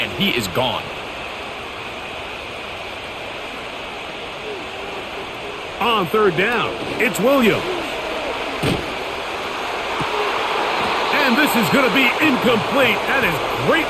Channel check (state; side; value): identical; both; correlation 1.00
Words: he is gone. On third down, it's Williams. And this is going to be incomplete. That is great